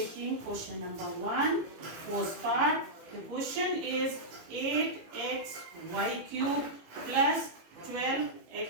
question number 1, first part. The question is 8xy cube plus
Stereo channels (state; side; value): late; left; 18 ms